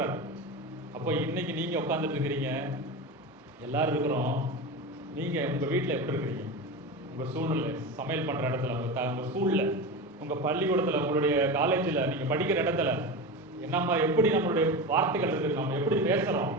அப்போ இன்னைக்கு நீங்க உட்காந்துட்டு இருக்கிறீங்க, எல்லாரும் இருக்கிறோம். நீங்க உங்க வீட்டில் எப்படி இருக்கிறீங்க? உங்க சூழ்நிலை, சமையல் பண்ற இடத்துல, உங்க ஸ்கூல்ல, உங்க பள்ளிக்கூடத்துல, உங்களுடைய காலேஜில், நீங்க படிக்கிற இடத்துல என்ன எப்படி நம்மளுடைய வார்த்தைகள் இருக்குது, நம்ம எப்படி பேசுறோம்,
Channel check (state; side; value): normal; both; correlation 0.24